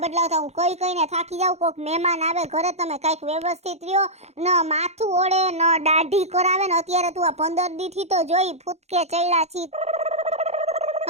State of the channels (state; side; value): late; left; 0.31 ms